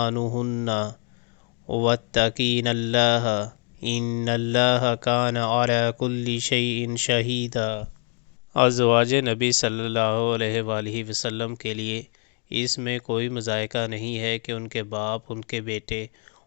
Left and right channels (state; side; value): quieter; right; 33.2 dB